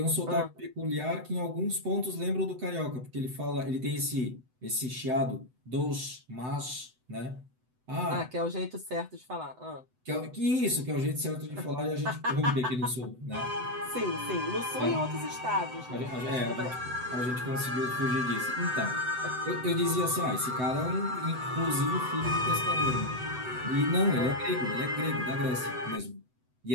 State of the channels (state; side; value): late; left; 7.9 ms